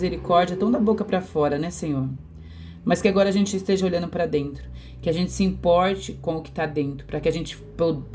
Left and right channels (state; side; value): identical; both; correlation 1.00